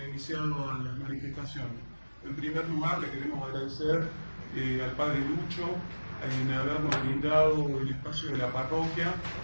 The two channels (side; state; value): both; inverted; correlation -1.00